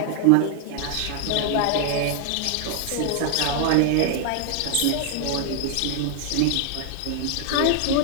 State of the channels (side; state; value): both; different; correlation 0.00